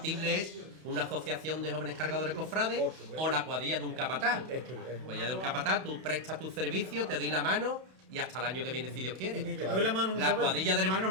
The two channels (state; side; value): late; left; 32 ms